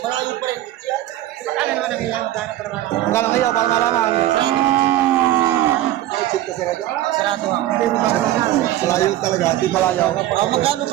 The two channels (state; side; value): quieter; left; 14.0 dB